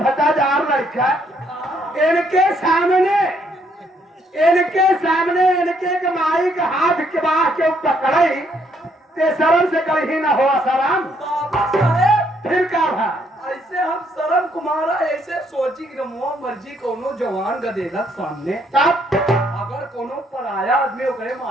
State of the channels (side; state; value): both; normal; correlation 0.70